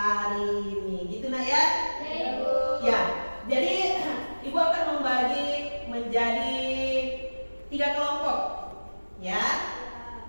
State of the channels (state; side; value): inverted; both; correlation -1.00